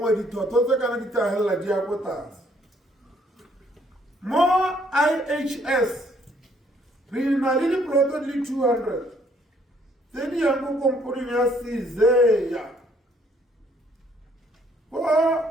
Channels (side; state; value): both; normal; correlation 0.66